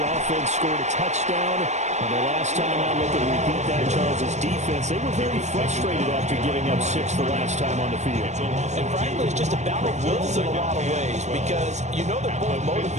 offense scored a touchdown. And the last time I looked at repeat that, Charles' defense, they were very frustrated after giving up 6 the last time on the field. And frankly, it's just a battle of wills in a lot of ways because you know they're both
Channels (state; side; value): late; left; 0.33 ms